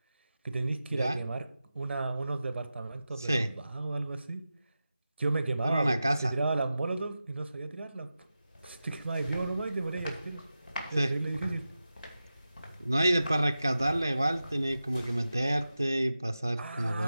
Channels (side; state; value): both; inverted; correlation -0.93